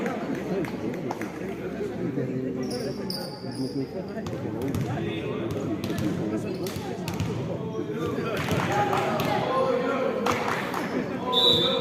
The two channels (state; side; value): identical; both; correlation 1.00